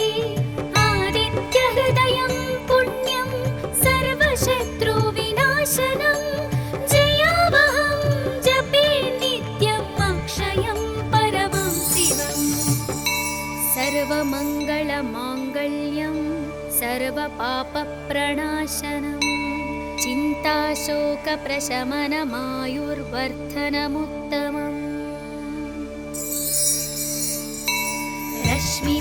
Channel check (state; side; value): identical; both; correlation 1.00